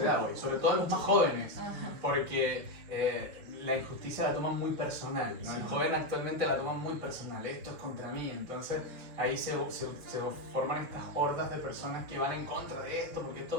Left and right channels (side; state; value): left; late; 6.3 ms